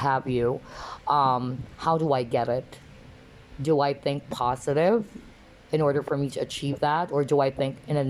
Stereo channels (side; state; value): both; identical; correlation 1.00